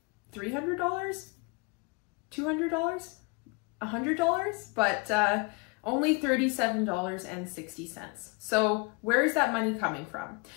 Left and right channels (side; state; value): right; quieter; 30.5 dB